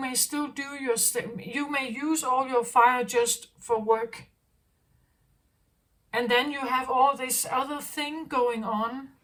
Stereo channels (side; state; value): both; identical; correlation 1.00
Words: still do you may use all your fire just for work. And then you have all this other thing going on